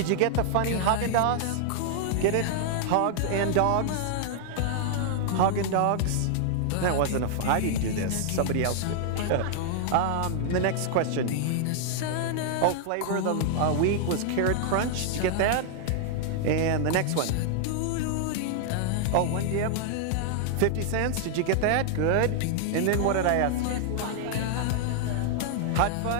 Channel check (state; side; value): different; both; correlation -0.01